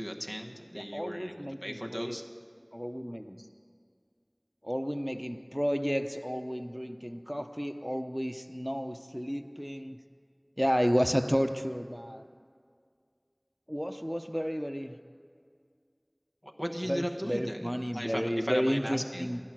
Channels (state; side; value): identical; both; correlation 1.00